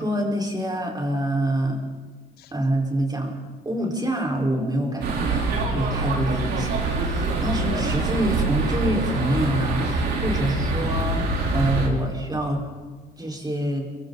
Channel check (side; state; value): both; normal; correlation 0.60